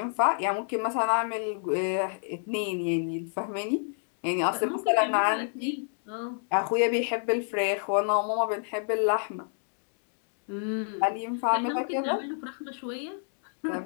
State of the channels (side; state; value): right; silent; digital silence